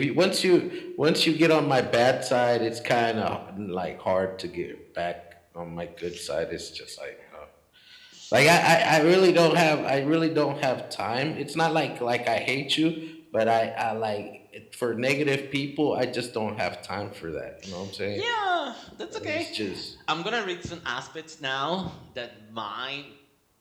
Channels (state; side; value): identical; both; correlation 1.00